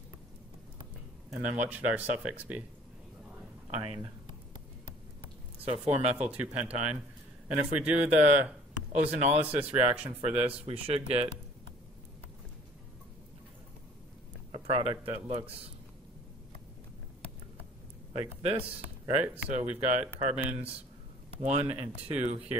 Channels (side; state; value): both; normal; correlation 0.53